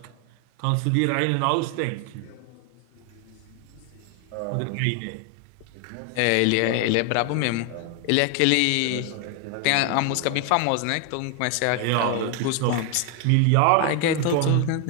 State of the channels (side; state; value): both; different; correlation 0.01